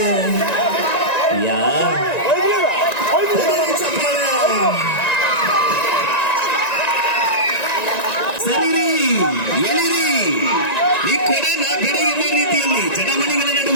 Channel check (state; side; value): late; right; 1.9 ms